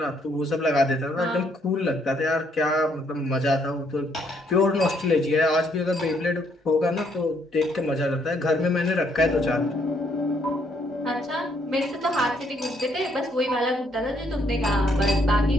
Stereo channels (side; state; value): both; normal; correlation 0.70